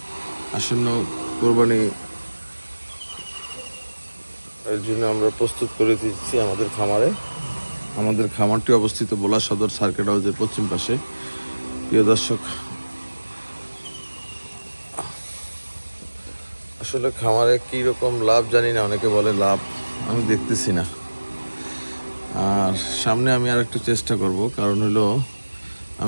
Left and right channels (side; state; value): both; inverted; correlation -1.00